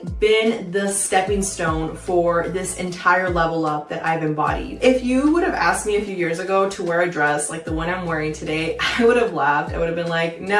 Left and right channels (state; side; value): identical; both; correlation 1.00